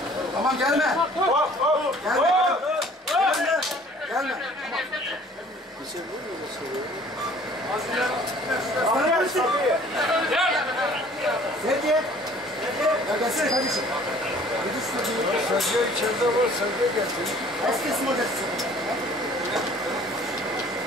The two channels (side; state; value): both; normal; correlation 0.53